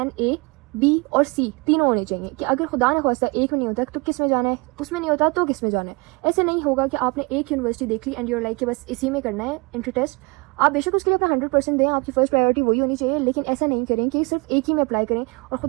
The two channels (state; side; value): quieter; left; 28.2 dB